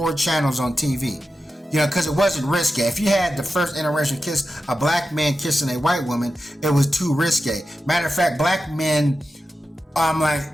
channels on TV. Because it wasn't risque. If you had the first interracial kiss, a black man kissing a white woman, it was too risque. Matter of fact, black men,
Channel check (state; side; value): normal; both; correlation 0.91